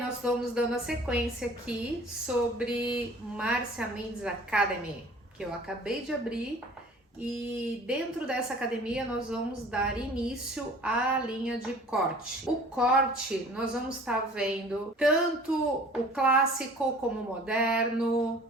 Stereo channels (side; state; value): both; normal; correlation 0.48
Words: vamos dando a sequência aqui sobre Márcia Mendes Academy, que eu acabei de abrir. E dentro dessa academia nós vamos dar início à linha de corte. O corte nós vamos estar vendo tanto o clássico como o moderno